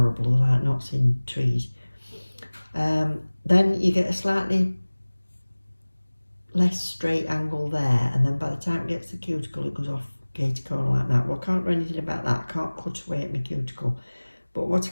like knots in trees. Then you get a slightly less straight angle there, and then by the time it gets the cuticle, it goes off gator corner like that. Well, I can't do anything about that. I can't cut away at my cuticle. But what I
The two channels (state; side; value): inverted; both; correlation -1.00